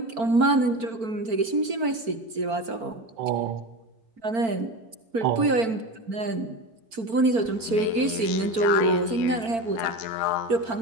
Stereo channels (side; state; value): left; late; 4.5 ms